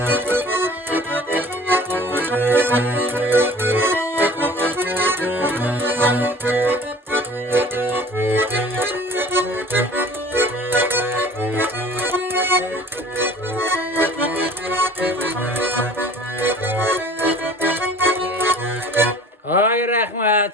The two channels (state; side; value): normal; both; correlation 0.47